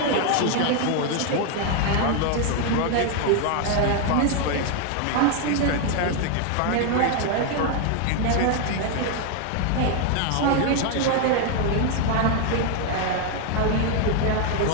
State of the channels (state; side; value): different; both; correlation 0.00